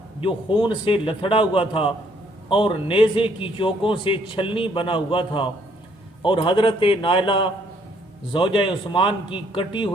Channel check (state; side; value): normal; both; correlation 0.66